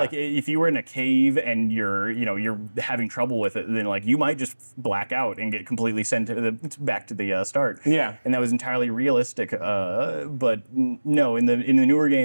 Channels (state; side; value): inverted; both; correlation -1.00